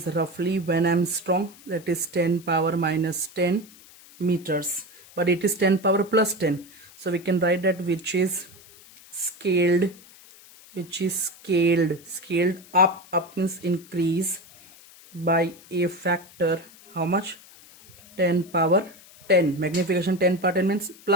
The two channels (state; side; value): noise; left; hiss, 23 dB below the sound